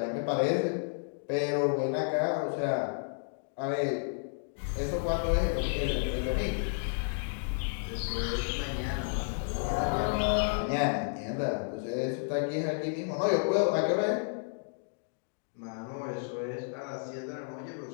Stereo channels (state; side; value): silent; right; digital silence